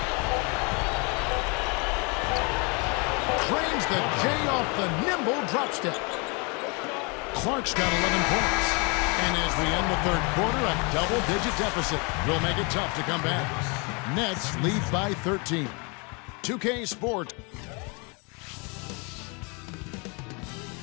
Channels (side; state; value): right; quieter; 31.8 dB